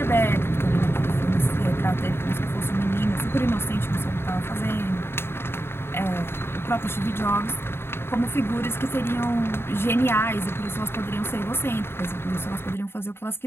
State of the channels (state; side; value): late; right; 0.11 ms